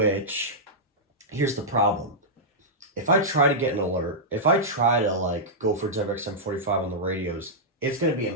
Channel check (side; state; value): both; normal; correlation -0.10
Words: here's the problem. If I try to get an alert, if I try to like go for WXM45 on the radios, it's going to be